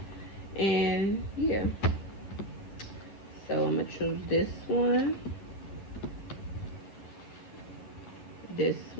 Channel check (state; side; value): late; right; 10 ms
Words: And yeah, so I'm gonna choose this one, and